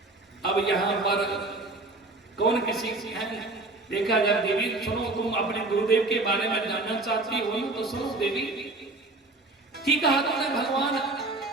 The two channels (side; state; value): left; quieter; 3.0 dB